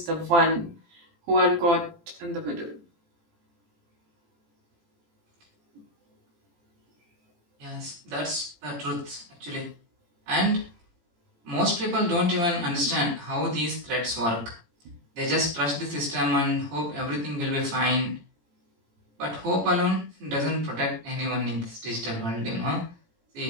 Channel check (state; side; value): late; left; 18 ms